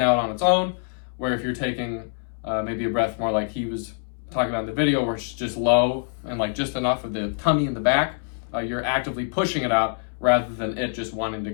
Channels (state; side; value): silent; right; 62 dB below the other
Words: on its own, where if you're taking maybe a breath more like he was talking about in the video, where it's just low and like just enough of the tummy in the back, you're actively pushing it out rather than it just wanting to